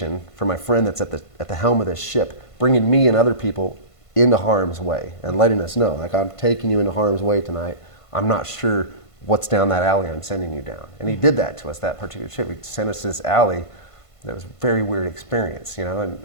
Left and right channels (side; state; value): right; late; 1.5 ms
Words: for my friend that's at the helm of this ship, bringing me and other people into harm's way and letting us know, like, I'm taking you into harm's way tonight. I'm not sure what's down that alley I'm sending you down. And he did that to us, that particular trip. He sent us this alley that was a very weird experience, and